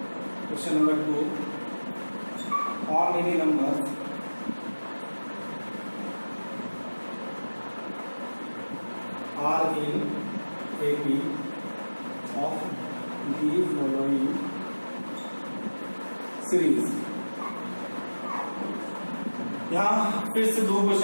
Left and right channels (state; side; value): inverted; both; correlation -1.00